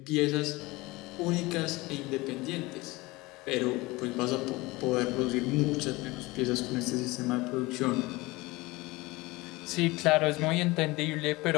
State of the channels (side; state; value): right; quieter; 21.8 dB